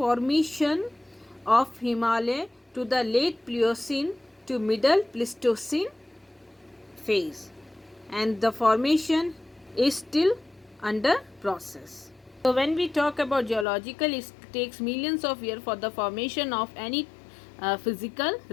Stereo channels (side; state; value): right; drops out; at 13.7 s